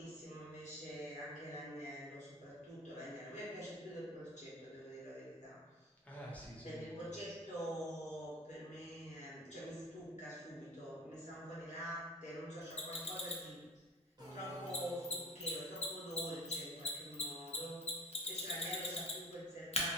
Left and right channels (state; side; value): normal; both; correlation 0.36